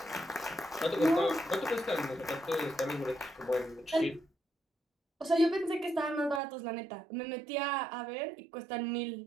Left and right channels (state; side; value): drops out; left; at 6.4 s